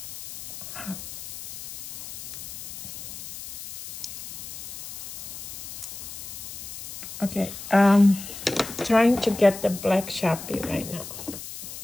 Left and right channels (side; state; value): left; noise; hiss, 11 dB below the sound